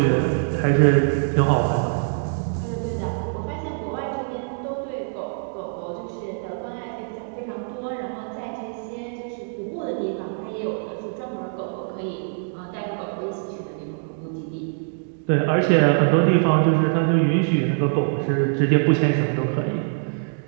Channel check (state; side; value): silent; left; digital silence